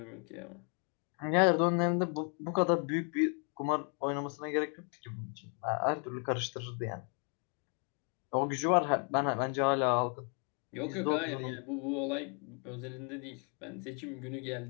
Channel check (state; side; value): quieter; right; 39.4 dB